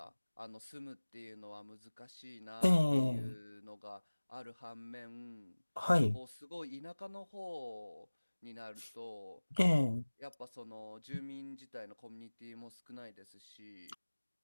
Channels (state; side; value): inverted; both; correlation -1.00